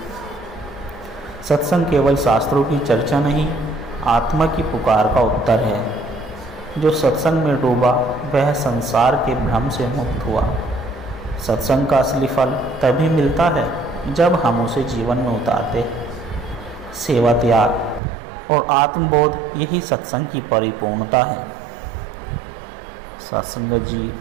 सत्संग केवल शास्त्रों की चर्चा नहीं, आत्मा की पुकार का उत्तर है। जो सत्संग में डूबा वह संसार के भ्रम से मुक्त हुआ। सत्संग का असली फल तभी मिलता है जब हम उसे जीवन में उतारते हैं। सेवा, त्याग और आत्मबोध यही सत्संग की परिपूर्णता है। सत्संगत जी,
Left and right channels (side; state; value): left; drops out; at 18.0 s